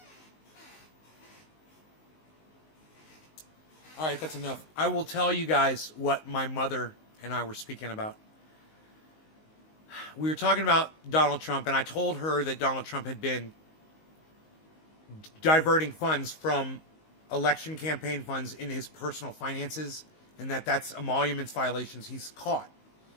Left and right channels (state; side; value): late; right; 19 ms